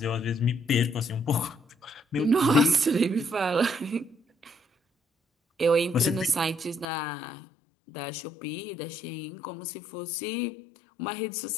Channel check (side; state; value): right; drops out; at 6.9 s